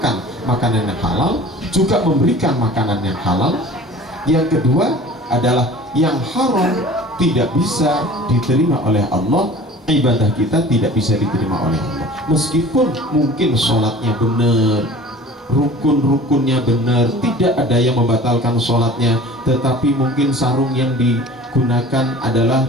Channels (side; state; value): both; normal; correlation 0.43